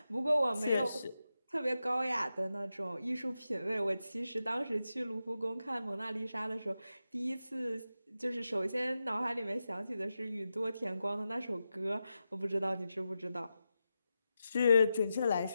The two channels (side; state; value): both; inverted; correlation -0.90